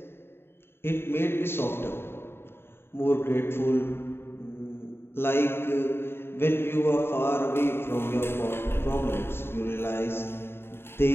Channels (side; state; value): right; late; 0.11 ms